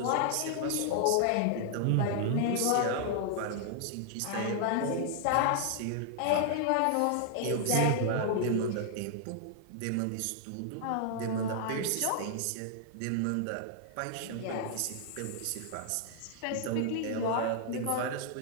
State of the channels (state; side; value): different; both; correlation 0.00